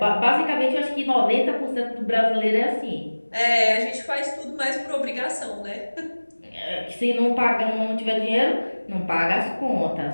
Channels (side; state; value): both; inverted; correlation -1.00